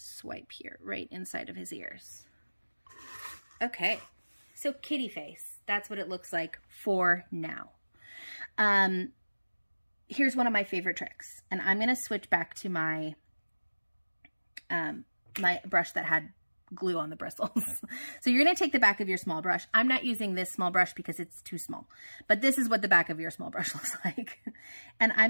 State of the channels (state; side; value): inverted; both; correlation -1.00